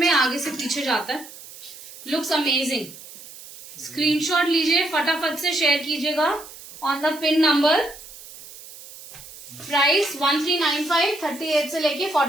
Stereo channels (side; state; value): right; noise; hiss, 17 dB below the sound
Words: आगे से पीछे जाता है. Looks amazing. स्क्रीनशॉट लीजिए, फटाफट से शेयर कीजिएगा on the pin number. Price 1395. 38 से लेके